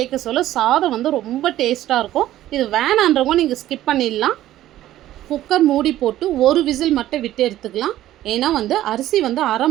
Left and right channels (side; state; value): left; quieter; 13.8 dB